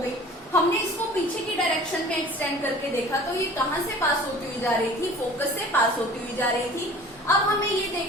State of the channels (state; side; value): normal; both; correlation 0.45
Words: गई। हमने इसको पीछे की डायरेक्शन में एक्सटेंड करके देखा तो ये कहाँ से पास होती हुई जा रही थी, फोकस से पास होती हुई जा रही थी। अब हमें ये